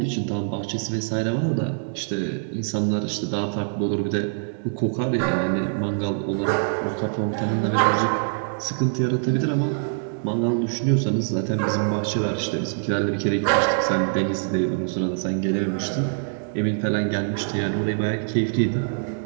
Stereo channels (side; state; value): left; silent; digital silence